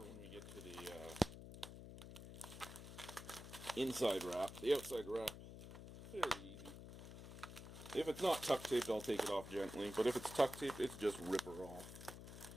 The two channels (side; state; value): left; noise; hum, 11 dB below the sound